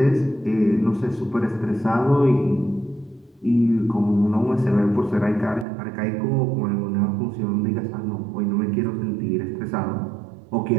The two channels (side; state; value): left; drops out; at 5.7 s